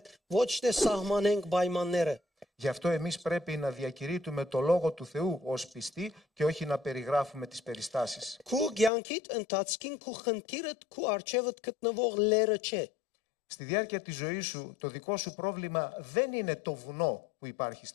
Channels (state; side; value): drops out; right; at 8.9 s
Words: ոչ թե սահմանենք պայմանները։ Γι' αυτό εμείς πρέπει να διακηρύττουμε το Λόγο του Θεού ως πιστοί και όχι να περιγράφουμε τις περιστάσεις. Քու ցանկիդ ընթացքին քու խնդիրդ քու արջևդ գտնվող լերը չէ։ Στη διάρκεια της ζωής σου, το δικό σου πρόβλημα δεν είναι το βουνό που υπάρχει